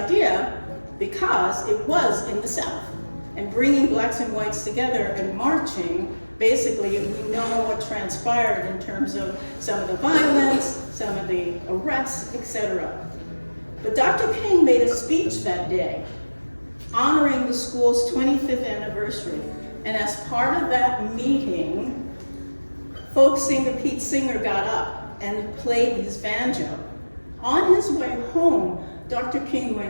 because it was in the South, and bringing Blacks and whites together and marching, basically we know what transpired in terms of some of the violence, some of the arrests, etc. But Dr. King made a speech that day honoring the school's 25th anniversary. And as part of that meeting, folk singer Pete Seeger got up and played his banjo. On his way home, Dr. King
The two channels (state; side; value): inverted; both; correlation -1.00